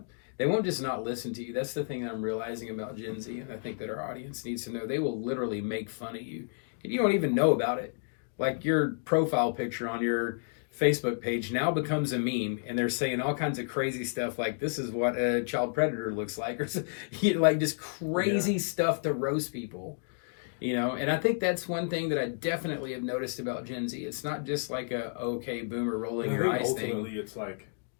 They won't just not listen to you. That's the thing that I'm realizing about Gen Z, and I think that our audience needs to know. They will literally make fun of you. And you don't even know about it. Like, your profile picture on your Facebook page now becomes a meme, and they're saying all kinds of crazy stuff like, this is what a child predator looks like, or like just crazy stuff to roast people. You know, and I think that's one thing that I definitely have noticed about Gen Z. It's not just like a, okay, boomer rolling your eyes thing. It's like...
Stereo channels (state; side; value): silent; right; digital silence